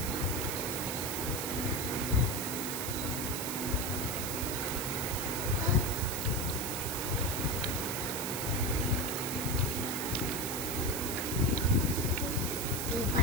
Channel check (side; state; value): right; noise; hiss, 3 dB below the sound